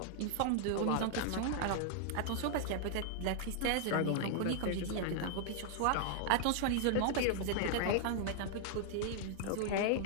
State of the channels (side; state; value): both; different; correlation 0.00